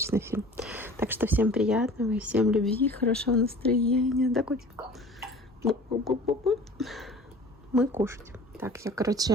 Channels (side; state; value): both; normal; correlation 0.45